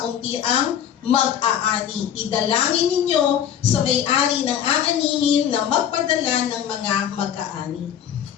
ang mag-aani. Idalangin ninyo sa may-ari ng aanihin na magpadala ng mga mag-aani.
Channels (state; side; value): quieter; right; 9.5 dB